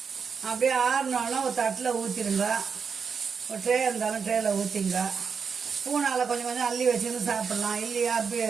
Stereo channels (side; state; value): left; quieter; 6.0 dB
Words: அப்படியே ஆறுனாலும் ஒரு தட்டில் ஊற்றிடுங்க. ஒரு ட்ரே இருந்தாலும் ட்ரேயில் ஊற்றிங்க. ஸ்பூனால் கொஞ்சம் கொஞ்சம் அள்ளி வச்சுன்னு சாப்பிட்லாம். இல்லையா அப்படியே